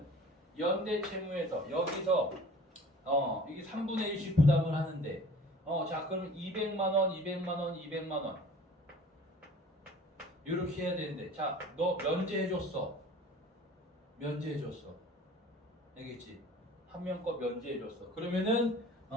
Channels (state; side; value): normal; both; correlation 0.46